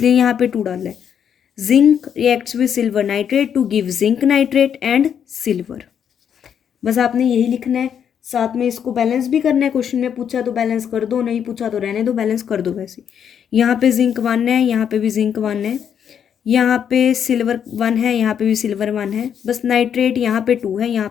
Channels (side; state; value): right; quieter; 8.3 dB